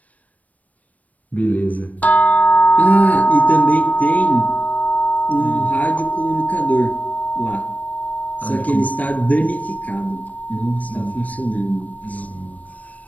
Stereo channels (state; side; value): late; right; 0.071 ms